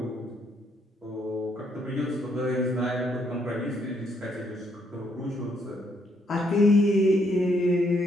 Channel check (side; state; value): both; normal; correlation 0.72